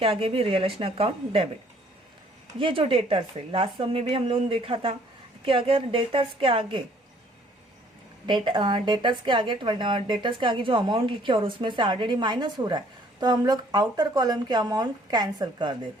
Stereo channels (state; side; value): normal; both; correlation 0.60